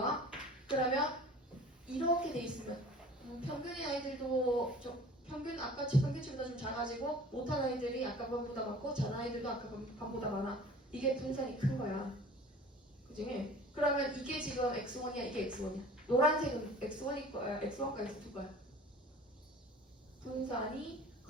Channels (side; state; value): both; normal; correlation 0.45